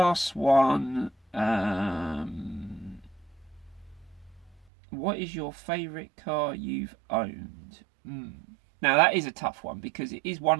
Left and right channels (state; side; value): drops out; left; at 4.6 s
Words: one, what is your favourite car you've owned? Now that is a tough one, because it is one